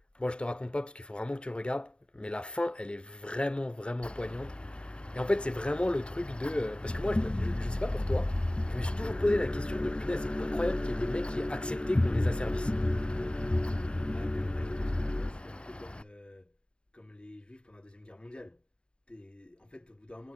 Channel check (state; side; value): late; right; 0.053 ms